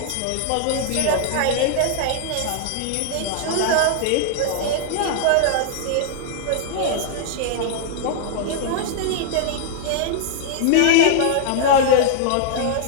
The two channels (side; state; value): both; different; correlation -0.01